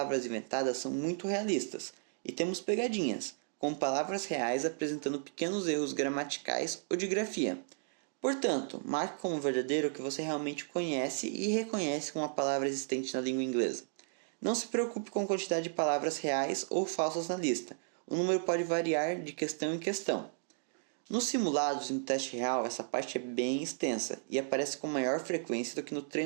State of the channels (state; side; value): silent; left; digital silence